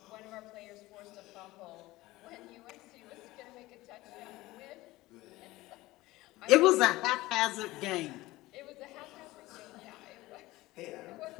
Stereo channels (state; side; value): quieter; right; 18.7 dB